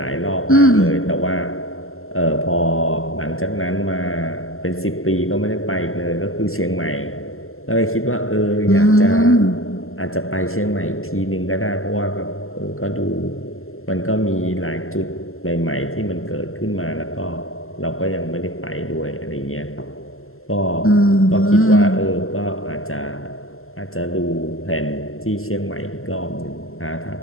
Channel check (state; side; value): late; right; 0.62 ms